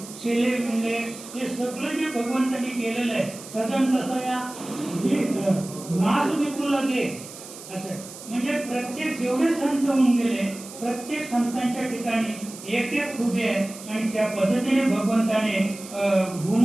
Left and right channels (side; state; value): right; noise; hiss, 15 dB below the sound